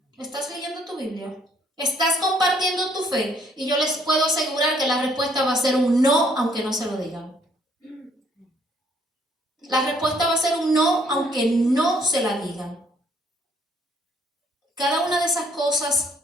¿Estás leyendo tu Biblia? ¿Estás compartiendo tu fe? Y yo les puedo asegurar que la respuesta va a ser un no, aunque no se lo digan. La respuesta va a ser un no, aunque no se la digan. Cada una de esas cosas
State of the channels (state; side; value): normal; both; correlation 0.65